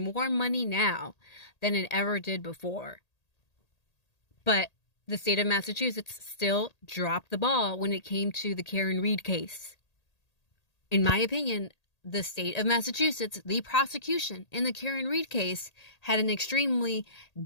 money now than it ever did before. But the state of Massachusetts still dropped the ball when it came to the Karen Read case. In my opinion, the state of Massachusetts, the prosecution in the Karen Read case, had an extremely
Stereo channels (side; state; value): right; late; 1.8 ms